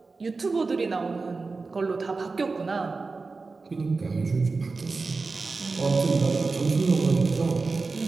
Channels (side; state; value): left; quieter; 4.0 dB